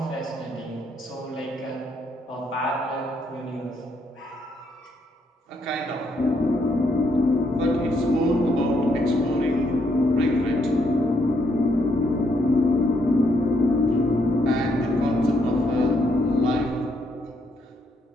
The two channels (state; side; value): normal; both; correlation 0.74